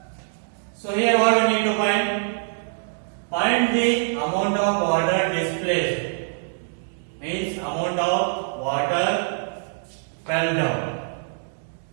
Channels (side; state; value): left; silent; digital silence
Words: So here what we need to find the amount of water displaced, means amount of water fell down.